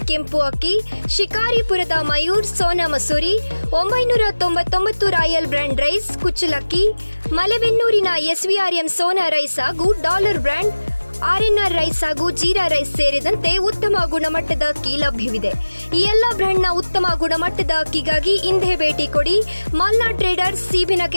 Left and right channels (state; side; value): inverted; both; correlation -1.00